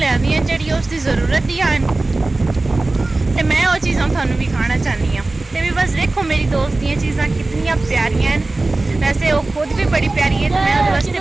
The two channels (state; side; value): quieter; left; 3.1 dB